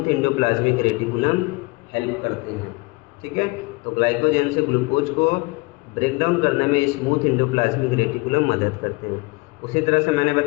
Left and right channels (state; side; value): quieter; right; 24.9 dB